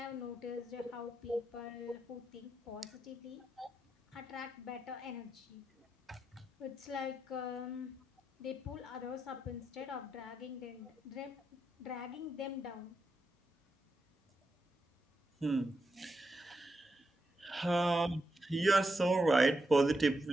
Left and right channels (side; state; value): both; normal; correlation 0.85